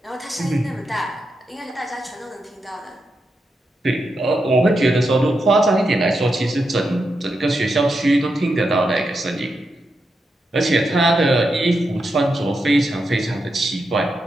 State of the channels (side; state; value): both; normal; correlation 0.86